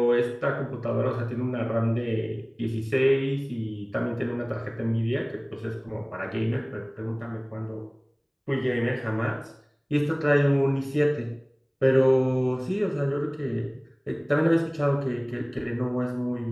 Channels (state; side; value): identical; both; correlation 1.00